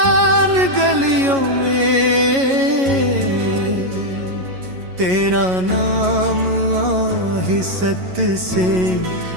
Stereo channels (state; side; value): late; left; 11 ms